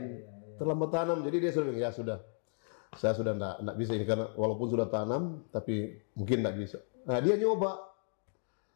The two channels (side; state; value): right; silent; digital silence